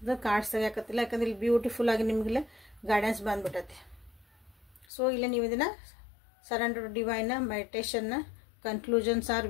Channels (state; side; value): drops out; right; at 4.9 s